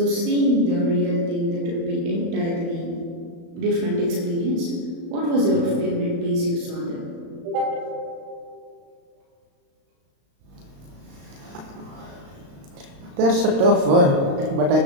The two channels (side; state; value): left; late; 35 ms